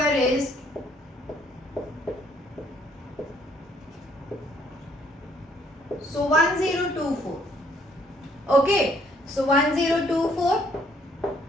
is 1024. Okay. So 1024.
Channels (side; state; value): both; normal; correlation 0.66